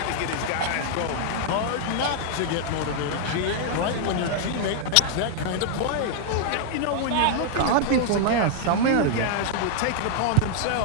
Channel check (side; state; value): both; different; correlation -0.01